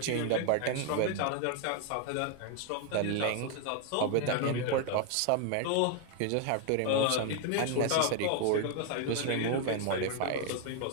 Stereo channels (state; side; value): different; both; correlation 0.00